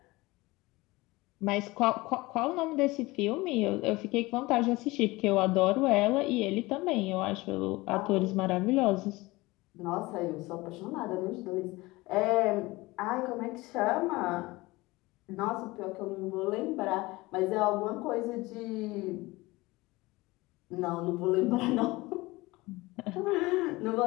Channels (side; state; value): right; quieter; 21.3 dB